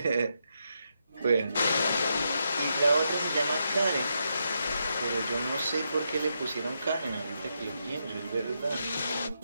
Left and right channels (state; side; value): inverted; both; correlation -0.82